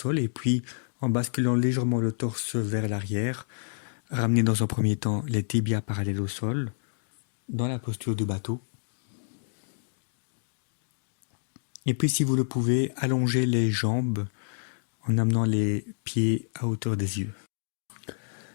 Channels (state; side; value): silent; right; digital silence